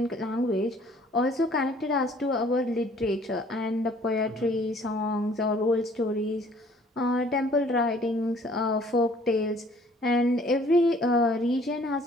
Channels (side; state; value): both; normal; correlation 0.57